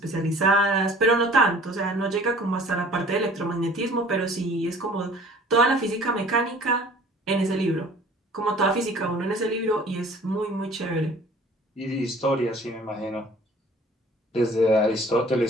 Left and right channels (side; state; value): both; normal; correlation 0.50